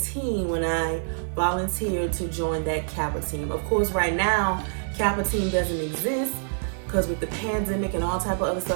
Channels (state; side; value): silent; left; digital silence